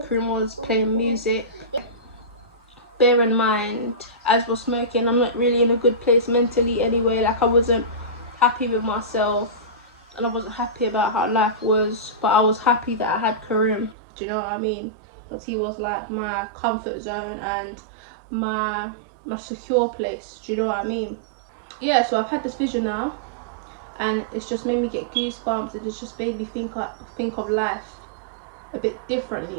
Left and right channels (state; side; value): drops out; left; at 14.0 s